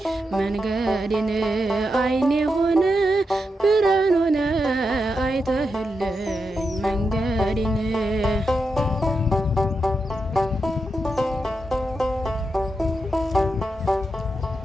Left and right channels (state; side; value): normal; both; correlation 0.86